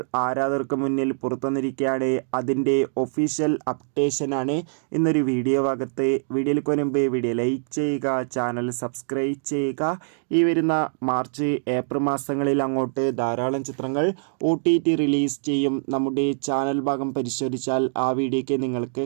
ആരാധകർക്ക് മുന്നിൽ പുറത്തുവന്നിരിക്കുകയാണ്. അതിൻ്റെ ഒഫീഷ്യൽ അപ്ഡേഷനാണ് ഇന്നൊരു വീഡിയോ ഭാഗത്ത്. വീഡിയോയിൽ മുൻപ് വീഡിയോ ലൈക്ക് ചെയ്യുക, ചാനൽ സബ്സ്ക്രൈബ് ചെയ്യുക. ഈ വരുന്ന മാർച്ച് ഏപ്രിൽ മാസങ്ങളിൽ അങ്ങോട്ട് ധാരാളം ചിത്രങ്ങൾ OTT റിലീസ് ചെയ്യും. നമ്മുടെ ചാനൽ ഭാഗം പരിശോധിച്ചാൽ ആ വീഡിയോയ്ക്ക് നിങ്ങൾക്ക്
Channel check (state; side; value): silent; left; digital silence